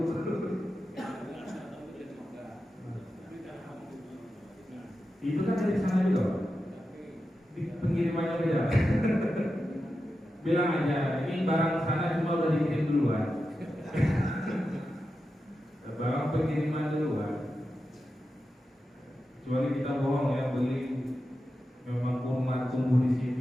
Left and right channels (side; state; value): both; normal; correlation 0.91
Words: itu kan dari sana juga, di pengirimannya beda. Bilang aja, ini barang sana cuma udah dikirim duluan. Barang pengiriman duluan. Kecuali kita bohong ya, beli memang kurma tumbuh di